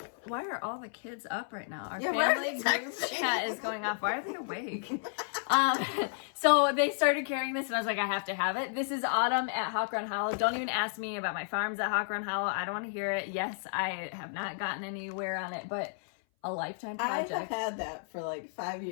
Why are all the kids up right now? Our why are family they group texting? chat is going off. Why are they awake? So they started carrying this, and I was like, I have to have it. This is Autumn at Hawk Run Hollow. Don't even ask me about my farms at Hawk Run Hollow. I don't want to hear it. Yes, I have not gotten anywhere on it, but a lifetime project. I have had that for like 5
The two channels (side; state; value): right; silent; 56 dB below the other